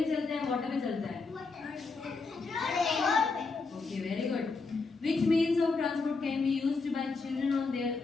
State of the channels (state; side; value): quieter; right; 4.1 dB